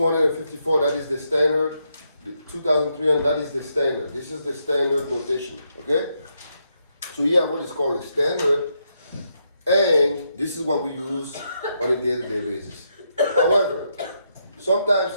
that is the standard. 2,300, that is the standard. This is the standard notation, okay? So you have what is called a standard, and this is what we use on a day-to-day basis. However,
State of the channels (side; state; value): both; inverted; correlation -0.80